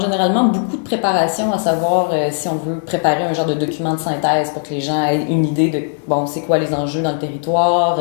généralement beaucoup de préparation, à savoir si on veut préparer un genre de document de synthèse pour que les gens aient une idée de, bon, c'est quoi les enjeux dans le territoire,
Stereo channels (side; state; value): right; silent; digital silence